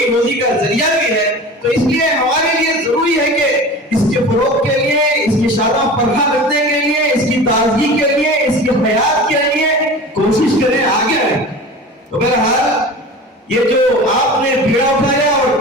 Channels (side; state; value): both; normal; correlation 0.35